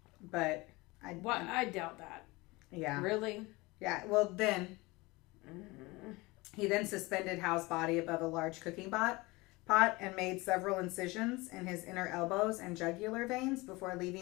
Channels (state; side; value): quieter; right; 22.8 dB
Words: but I doubt that. Yeah. Really? Yeah. Well, then he then suspended Hal's body above a large cooking pot and made several incisions in his inner elbows and jugular veins before